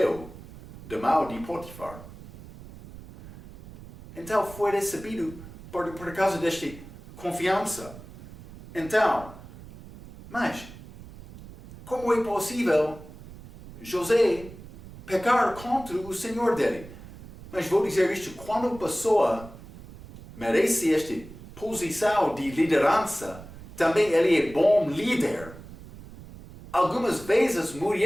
da mão de Potifar. Então foi recebido por causa desta confiança. Então, mas, como é possível José pecar contra o Senhor dele? Mas vou dizer isto: quando a pessoa merece esta posição de liderança, também ele é bom líder. Algumas vezes a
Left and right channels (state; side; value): noise; right; rumble, 17 dB below the sound